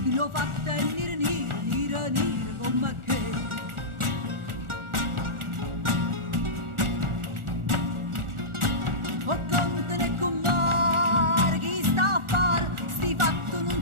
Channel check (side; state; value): left; late; 1.4 ms